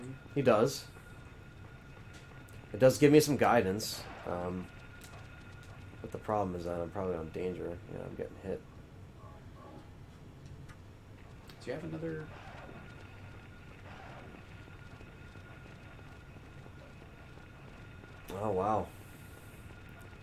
He does. It does give me some guidance, but the problem is that I'm probably on danger. I'm getting hit. Do you have another? Oh, wow.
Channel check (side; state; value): both; identical; correlation 1.00